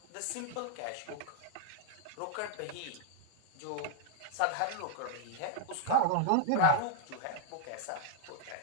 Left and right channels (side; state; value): both; different; correlation -0.01